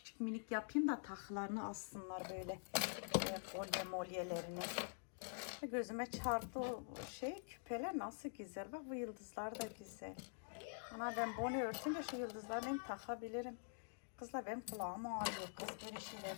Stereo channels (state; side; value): silent; right; digital silence